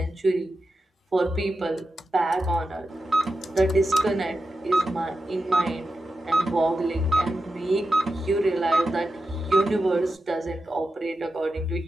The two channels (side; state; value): both; normal; correlation 0.90